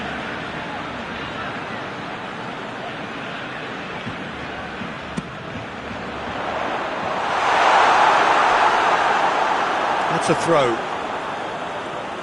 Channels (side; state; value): both; identical; correlation 1.00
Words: That's a throw.